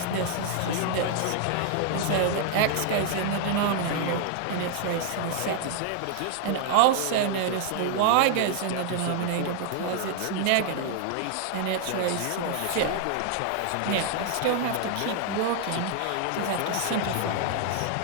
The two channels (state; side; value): different; both; correlation 0.00